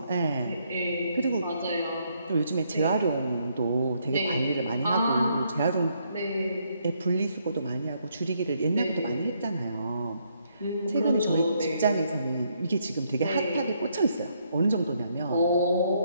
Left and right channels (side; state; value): both; inverted; correlation -0.73